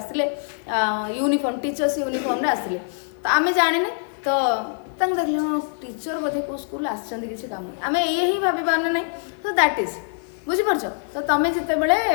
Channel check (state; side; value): silent; right; 63 dB below the other